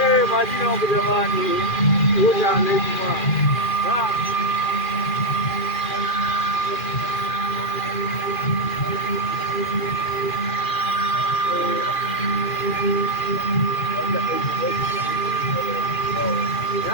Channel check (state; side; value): late; right; 2.4 ms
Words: majina wangu jamani huja anaitwa